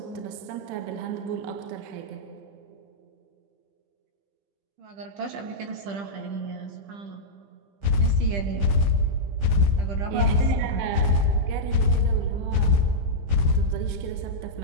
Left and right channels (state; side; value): late; left; 15 ms